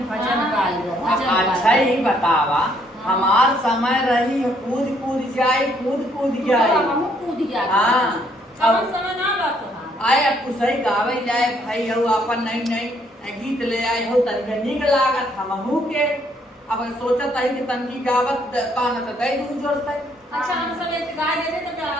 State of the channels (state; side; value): normal; both; correlation 0.68